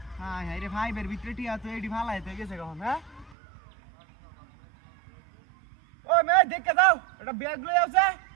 হাই হাই রে ভাই, বের ভিতরে টিয়া তো এডি ফালা এতে গেছে কখন? হ্যাঁ ও মে দেখে দাও, এটা ব্যাগ লই আছে।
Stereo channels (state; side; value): drops out; left; at 3.4 s